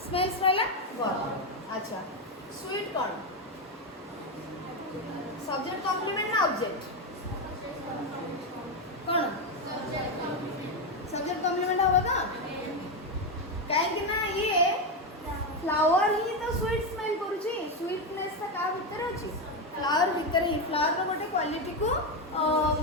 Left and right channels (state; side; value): normal; both; correlation 0.09